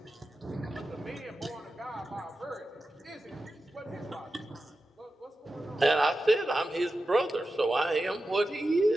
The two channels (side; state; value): both; normal; correlation 0.92